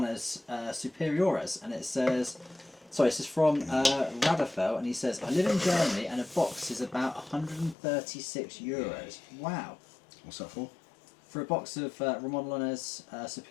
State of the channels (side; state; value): right; drops out; at 7.8 s